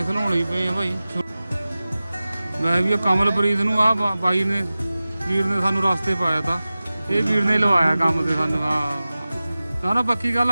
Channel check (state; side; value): inverted; both; correlation -0.97